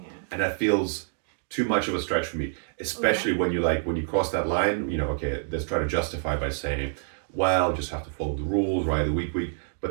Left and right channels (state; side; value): silent; left; digital silence